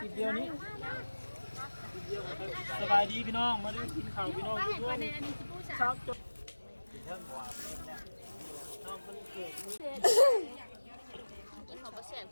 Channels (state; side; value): inverted; both; correlation -1.00